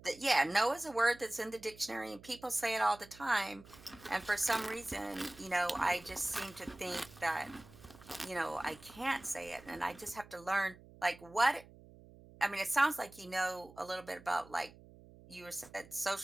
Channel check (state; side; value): noise; right; hum, 21 dB below the sound